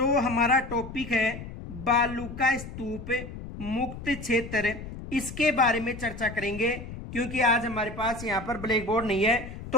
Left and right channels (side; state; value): left; noise; rumble, 11 dB below the sound